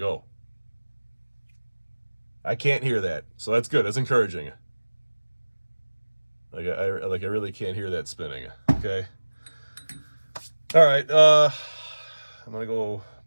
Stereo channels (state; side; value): inverted; both; correlation -1.00